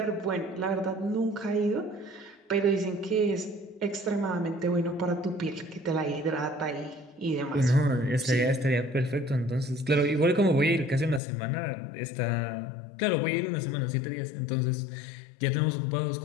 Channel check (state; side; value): drops out; right; at 11.2 s